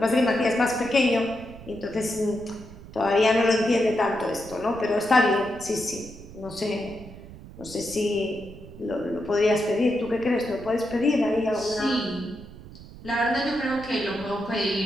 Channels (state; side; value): noise; right; rumble, 16 dB below the sound